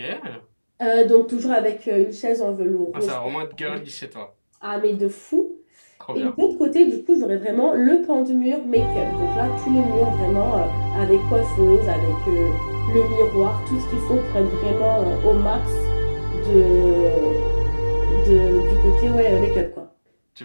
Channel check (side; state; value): both; inverted; correlation -1.00